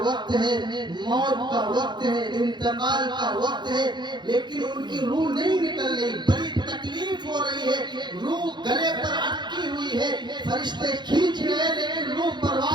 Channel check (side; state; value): left; late; 0.21 ms